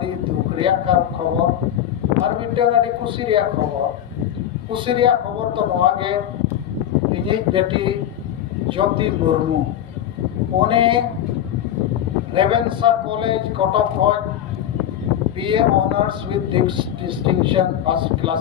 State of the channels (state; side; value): quieter; right; 10.9 dB